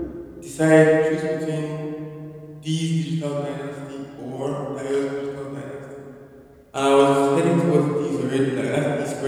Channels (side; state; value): both; identical; correlation 1.00